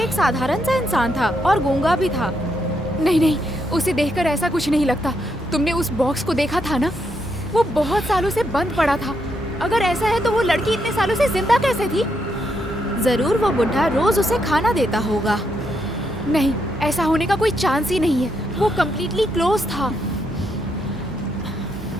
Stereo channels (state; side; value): normal; both; correlation 0.79